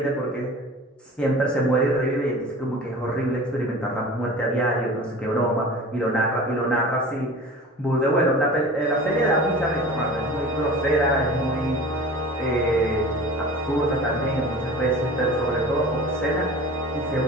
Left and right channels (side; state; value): both; normal; correlation 0.39